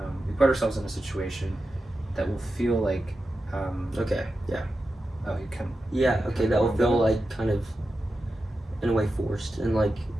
we put ourselves in a situation that will feel like okay, yeah. Oh, you can. Yeah, okay, that will feel kind of in a way forced and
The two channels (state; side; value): normal; both; correlation 0.91